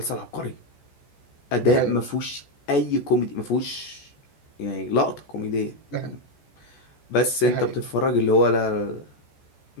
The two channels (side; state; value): right; late; 14 ms